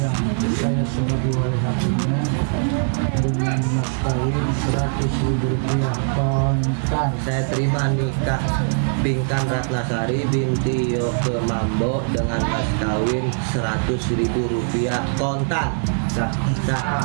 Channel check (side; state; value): left; silent; digital silence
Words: yang saya sebagai wali hatinya dengan mas kawin 100.000 rupiah kontan. Saya terima nikah Pinkan Ratnasari binti Yoke Mambo dengan mas kawin 100.000 rupiah kontan. Sah.